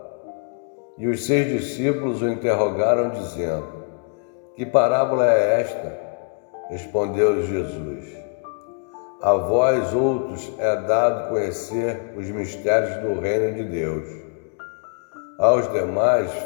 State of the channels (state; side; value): quieter; right; 38.9 dB